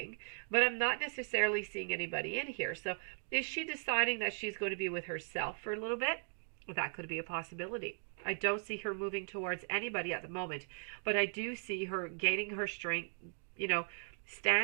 but I'm not necessarily seeing anybody in here. So is she deciding that she's going to be with herself for a little bit? That could be a possibility. I don't see her moving towards anybody at the moment, but I do see her gaining her strength,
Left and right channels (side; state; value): left; silent; 53 dB below the other